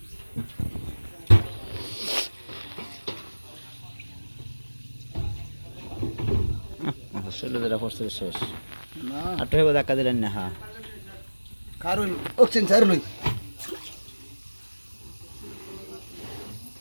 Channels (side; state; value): both; inverted; correlation -1.00